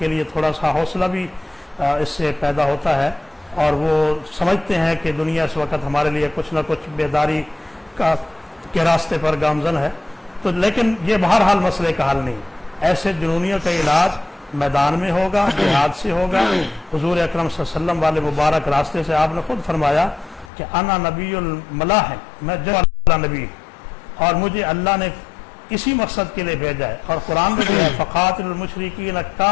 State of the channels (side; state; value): right; drops out; at 20.5 s